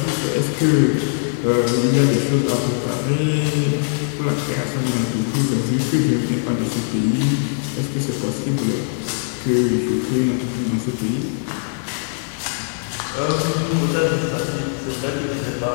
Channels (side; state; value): right; silent; 55 dB below the other